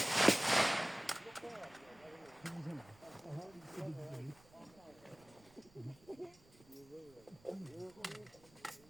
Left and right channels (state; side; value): noise; right; rumble, 26 dB below the sound